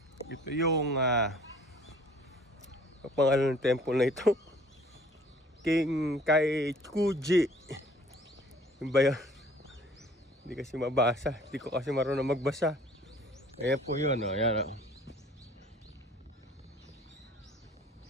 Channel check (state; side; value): normal; both; correlation 0.53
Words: Ito yung pangalan ng temple na ito. Kinkaikuji. Yung ba yan? Hindi kasi mabasa. Hindi ko kasi marunong magbasa. Ayan po yun. Oh. Ayan, oh.